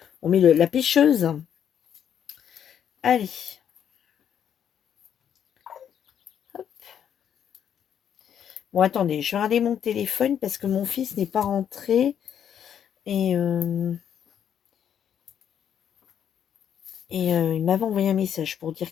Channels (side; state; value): right; quieter; 9.0 dB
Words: la pêcheuse. Allez. Hop. Bon, attendez, je vais regarder mon téléphone parce que mon fils n'est pas rentré. Et il m'avait envoyé un message pour